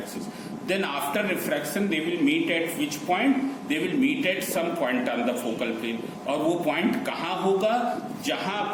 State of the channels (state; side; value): identical; both; correlation 1.00